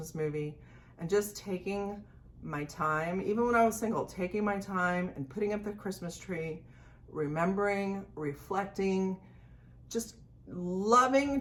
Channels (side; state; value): both; identical; correlation 1.00